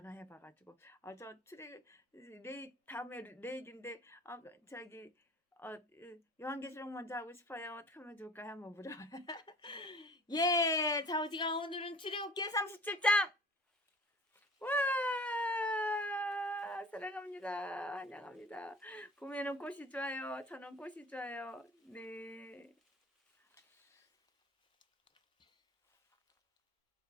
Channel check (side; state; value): both; normal; correlation 0.45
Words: 저 다음에 레이기인데 저기 요한계시록 먼저 하고 싶어요. 어떻게 하면 좋을까요? 한번 물어봐. 예, 자, 우지가 오늘은 출애굽기 37장. 와, 사랑합니다. 환영합니다. 봄에는 꽃이 좋아요. 저는 꽃이 좋아요. 네.